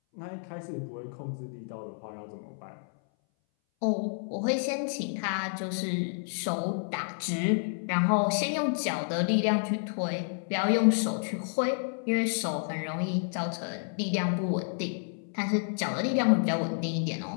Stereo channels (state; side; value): silent; right; 58 dB below the other